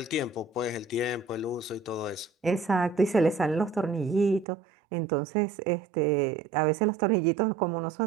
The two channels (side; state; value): left; drops out; at 4.5 s